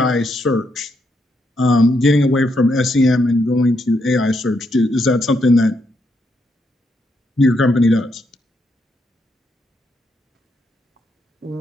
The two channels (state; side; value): normal; both; correlation 0.78